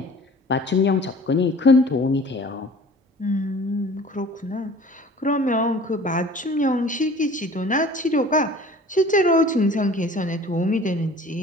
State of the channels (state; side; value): normal; both; correlation 0.46